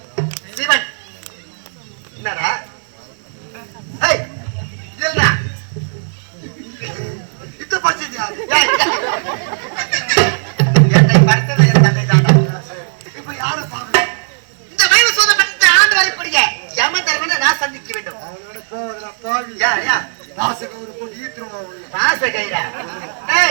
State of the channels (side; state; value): left; silent; digital silence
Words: சிவன். என்னடா? ஏய், இல்லடா. இத்த படிச்சது யாரு? ஏய், என்னை படைத்தது என் தந்தை தாண்டா. இப்ப யாரை பாக்கணும்? இந்த வைவ சூதப்பட்ட ஆண்டு வரக்கூடிய யம தர்மனை நான் சந்திக்க வேண்டும். அவனோட போவதுல பாவி யா வாசக ஒரு போட்டு ஈத்துருமா அவளை. காச கைடா.